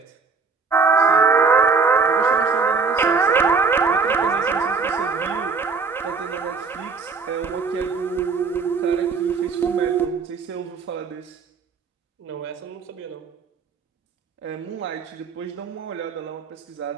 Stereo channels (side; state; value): left; quieter; 4.8 dB